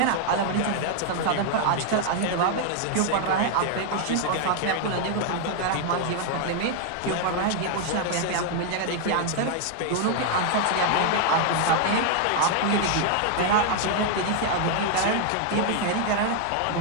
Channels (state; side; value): different; both; correlation 0.00